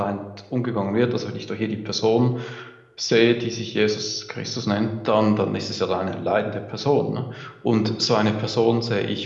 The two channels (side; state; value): both; identical; correlation 1.00